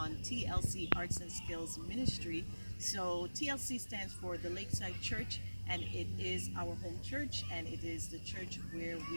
TLC Arts and Skills Ministry. So TLC stands for the Lakeside Church, and it is our home church, and it is the church where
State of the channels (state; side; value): inverted; both; correlation -1.00